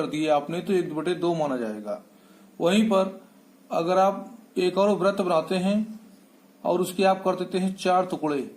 दिए आपने, तो 1/2 माना जाएगा। वहीं पर अगर आप एक और वृत्त बनाते हैं और उसके आप कर देते हैं 4 टुकड़े,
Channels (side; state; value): both; identical; correlation 1.00